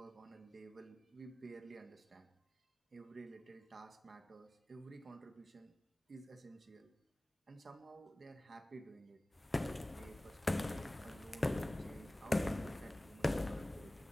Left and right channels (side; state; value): both; normal; correlation 0.98